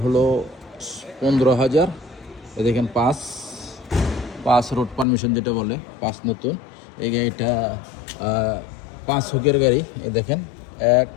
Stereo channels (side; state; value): right; drops out; at 5.1 s